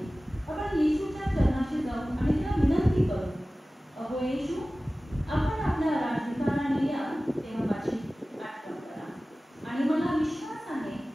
आपण येशूच्या चरणाशी जाऊन आणि त्याला विनंती करू, अहो येशू, आपण आपल्या राजधिकाराने याल तेव्हा माझी आठवण करा आणि मला विश्वास आहे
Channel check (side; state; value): both; normal; correlation 0.97